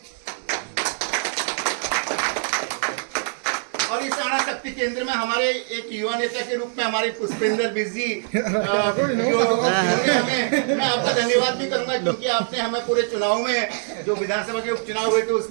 और इस आना शक्ति केंद्र में हमारे एक युवा नेता के रूप में हमारे पुष्पेंद्र बिजी मैं आपका धन्यवाद भी करूंगा, क्योंकि आपने हमें पूरे चुनाव में जो विधानसभा के उपचुनाव हुए थे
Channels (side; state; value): left; silent; 63 dB below the other